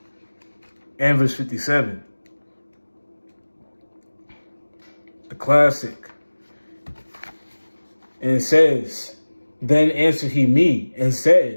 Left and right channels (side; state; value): both; inverted; correlation -1.00